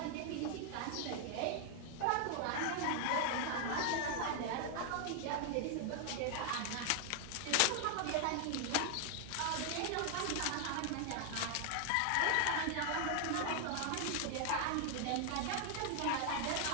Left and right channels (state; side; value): different; both; correlation 0.00